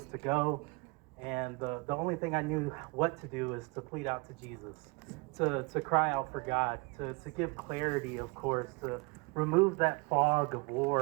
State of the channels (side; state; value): left; quieter; 28.3 dB